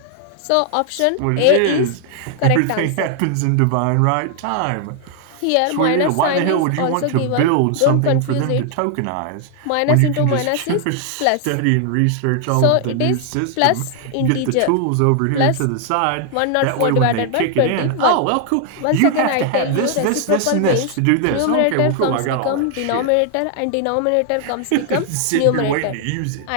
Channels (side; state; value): both; different; correlation 0.00